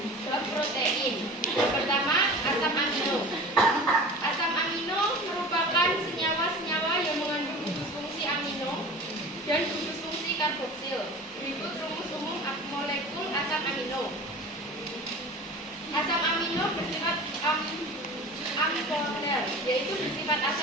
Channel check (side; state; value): both; normal; correlation 0.37